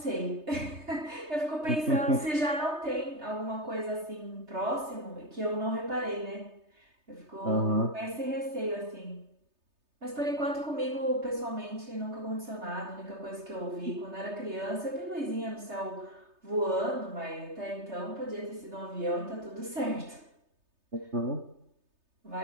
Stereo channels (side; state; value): left; late; 3.3 ms